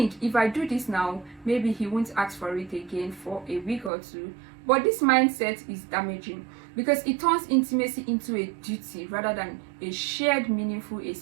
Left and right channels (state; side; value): drops out; left; at 3.9 s